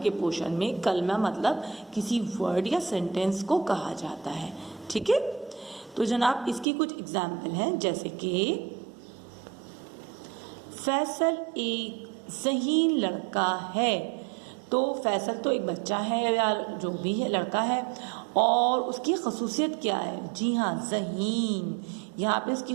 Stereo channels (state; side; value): drops out; left; at 6.7 s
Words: पोर्शन में कलमा मतलब किसी वर्ड या सेंटेंस को कहा जाता है। ठीक है, तो जनाब इसकी कुछ एग्जाम्पल हैं, जैसे कि फैसल एक ज़हीन लड़का है। तो फैसल तो एक बच्चा है या जो भी है, लड़का है, और उसकी खसूसियत क्या है? जी हाँ, ज़हीन। यहाँ पे